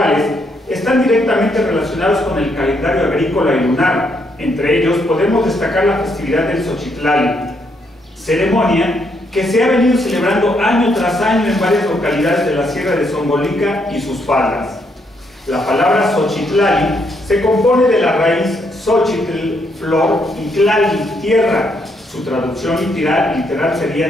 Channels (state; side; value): normal; both; correlation 0.75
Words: están directamente relacionados con el calendario agrícola y lunar. Entre ellos podemos destacar la festividad del Xochitlali, ceremonia que se ha venido celebrando año tras año en varias localidades de la Sierra de Zongolica y sus faldas. La palabra Xochitlali se compone de la raíz Xochitl, flor, y Tlali, tierra. Su traducción literal